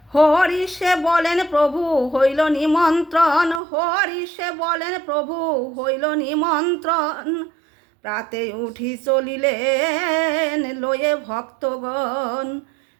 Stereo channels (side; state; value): left; drops out; at 3.6 s